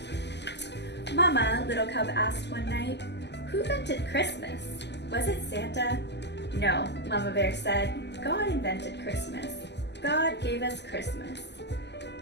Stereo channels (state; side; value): late; right; 0.50 ms